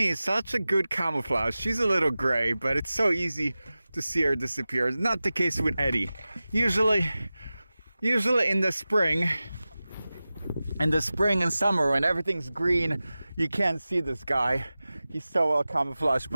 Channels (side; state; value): both; inverted; correlation -0.96